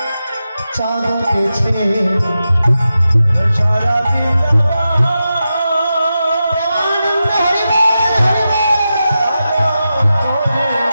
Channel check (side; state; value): both; inverted; correlation -0.90